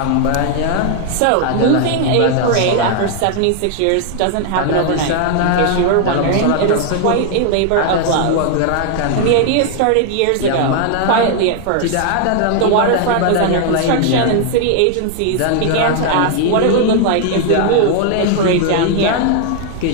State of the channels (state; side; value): different; both; correlation 0.00